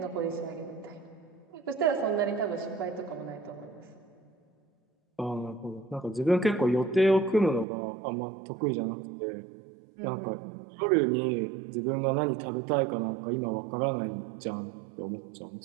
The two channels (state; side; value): drops out; left; at 7.7 s